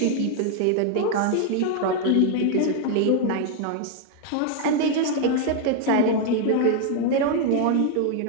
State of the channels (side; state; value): both; different; correlation 0.00